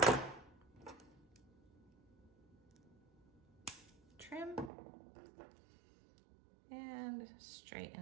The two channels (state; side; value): drops out; left; at 4.7 s